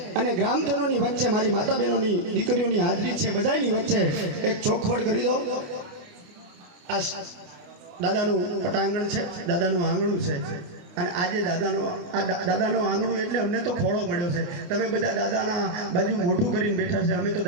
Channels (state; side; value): late; left; 28 ms